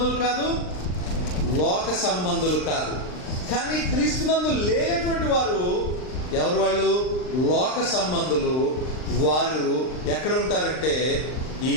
కాదు? లోక సంబంధులు కాదు. కానీ క్రీస్తునందు లేనటువంటి వారు ఎవరు? వాళ్ళు లోక సంబంధులు. వారు ఎక్కడ ఉంటారంటే ఈ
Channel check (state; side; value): late; right; 39 ms